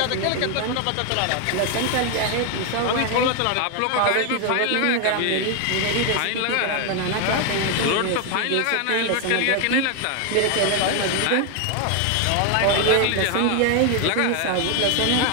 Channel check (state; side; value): different; both; correlation 0.01